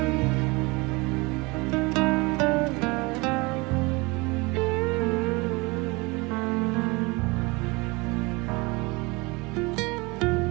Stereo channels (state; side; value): quieter; left; 25.5 dB